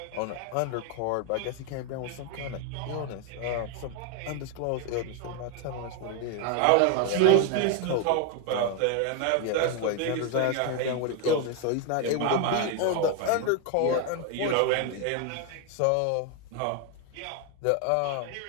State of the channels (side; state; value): both; different; correlation 0.01